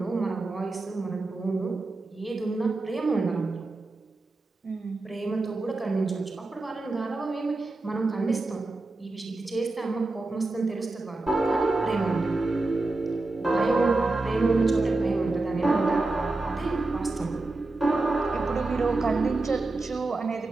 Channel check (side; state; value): left; quieter; 3.2 dB